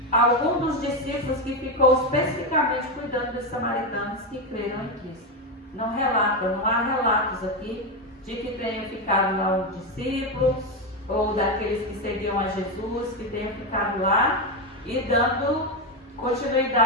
algum dos discípulos que ficou especificamente cuidando dos samaritanos que creram em Cristo. Não há relatos aqui de que tenham ficado lá um discípulo, ou daqueles que seguiam a Jesus, que tenham ficado lá e dando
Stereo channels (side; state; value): both; normal; correlation 0.10